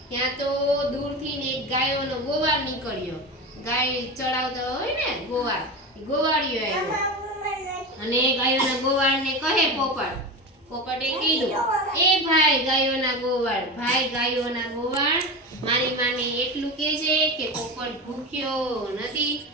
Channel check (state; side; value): normal; both; correlation 0.24